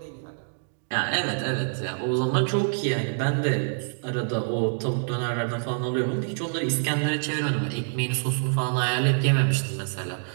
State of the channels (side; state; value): left; silent; digital silence